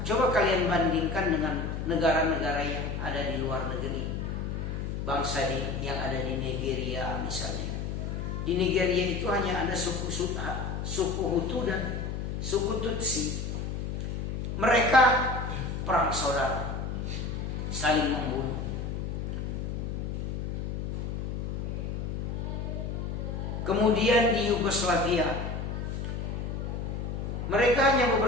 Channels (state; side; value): noise; left; hum, 3 dB below the sound